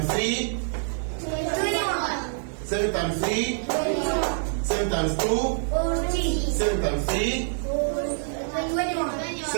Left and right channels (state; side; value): silent; left; digital silence